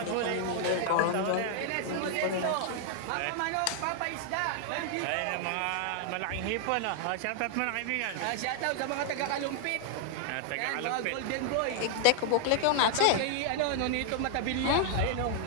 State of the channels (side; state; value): both; different; correlation 0.00